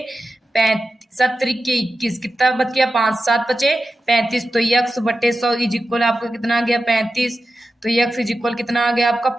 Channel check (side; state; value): both; normal; correlation 0.92